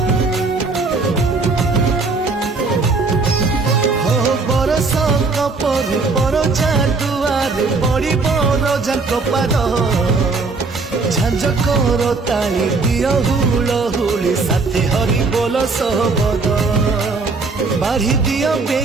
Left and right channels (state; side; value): quieter; left; 4.0 dB